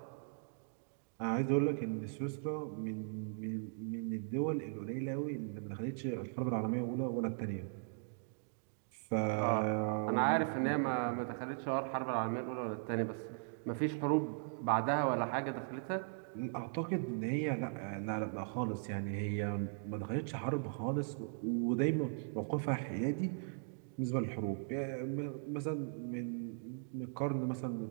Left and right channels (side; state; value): left; silent; digital silence